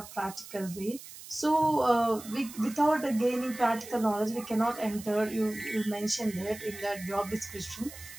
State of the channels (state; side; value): noise; right; hiss, 15 dB below the sound